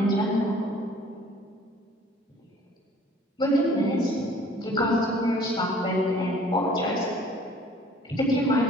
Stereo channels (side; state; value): both; normal; correlation 0.53